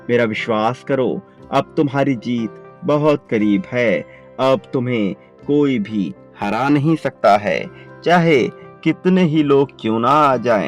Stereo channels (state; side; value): identical; both; correlation 1.00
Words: मेरा विश्वास करो, अब तुम्हारी जीत बहुत करीब है। अब तुम्हें कोई भी हरा नहीं सकता है। चाहे कितने ही लोग क्यों ना आ